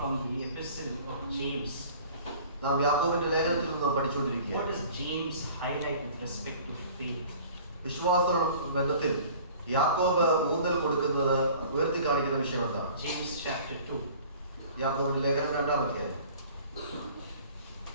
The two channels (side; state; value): both; inverted; correlation -0.47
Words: the epistle of James. നാം യാക്കോബിന്റെ ലേഖനത്തിൽ നിന്ന് പഠിച്ചുകൊണ്ടിരിക്കുകയാണ്. What does James highlight with respect to faith? വിശ്വാസ ബന്ധത്തിൽ യാക്കോബ് ഊന്നൽ കൊടുക്കുന്നത് ഉയർത്തി കാണിക്കുന്ന വിഷയം എന്താണ്? James chapter 2. യാക്കോബിന്റെ ലേഖനം 2-ാം അധ്യായം.